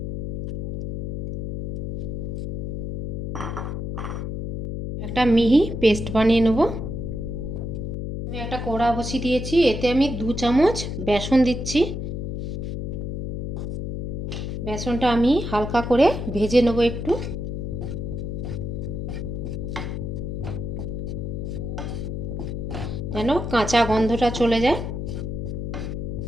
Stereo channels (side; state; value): left; noise; hum, 3 dB below the sound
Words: একটা মিহি পেস্ট বানিয়ে নেব। আমি একটা কড়া বসিয়ে দিয়েছি, এতে আমি 2 চামচ বেসন দিচ্ছি। বেসনটা আমি হালকা করে ভেজে নেব একটু। যেন কাঁচা গন্ধটা চলে যায়।